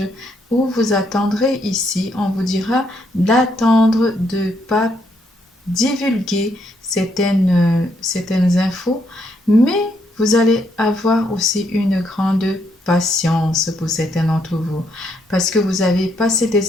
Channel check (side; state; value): both; normal; correlation 0.74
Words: où vous attendrez ici. On vous dira d'attendre, de ne pas divulguer certaines infos, mais vous allez avoir aussi une grande patience pour certains d'entre vous parce que vous avez passé